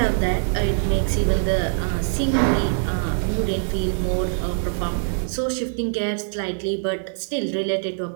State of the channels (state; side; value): silent; left; digital silence